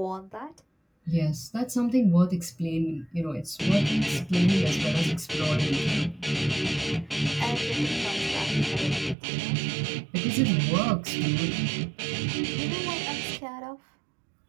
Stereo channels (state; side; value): drops out; left; at 9.2 s